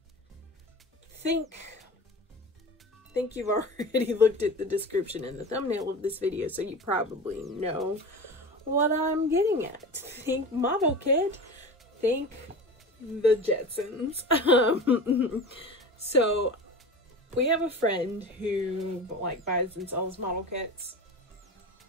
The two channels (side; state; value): both; normal; correlation 0.32